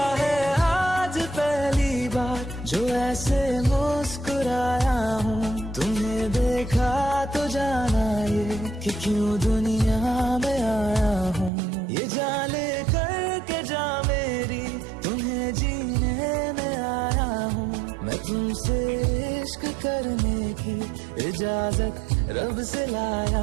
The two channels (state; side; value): drops out; left; at 11.5 s